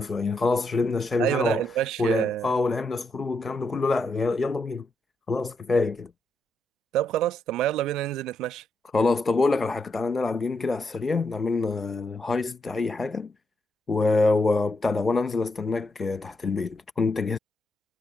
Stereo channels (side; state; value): both; normal; correlation 0.80